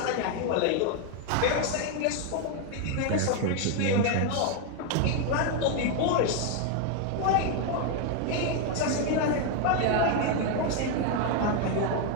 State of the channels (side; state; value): both; different; correlation 0.01